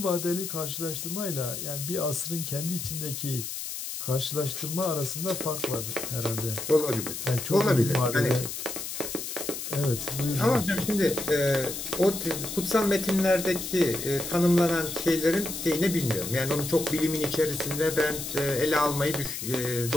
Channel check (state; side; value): noise; left; hiss, 6 dB below the sound